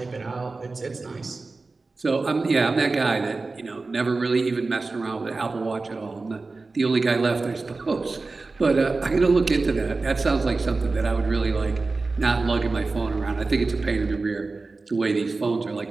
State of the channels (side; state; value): left; quieter; 3.7 dB